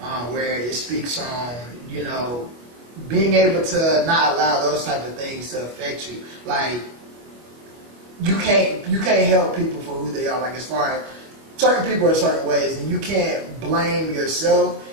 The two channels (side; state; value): left; late; 25 ms